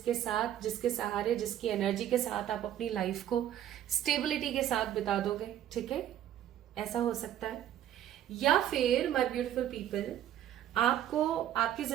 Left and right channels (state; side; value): quieter; left; 11.3 dB